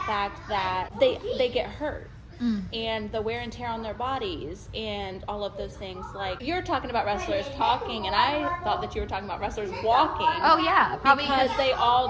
that they get hurt. And the wear and tear on their bodies and all of those things. Like, you're talking about wrestlers talking, and I thought that you were talking about wrestlers walking. Oh, yeah. Probably because they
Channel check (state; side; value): identical; both; correlation 1.00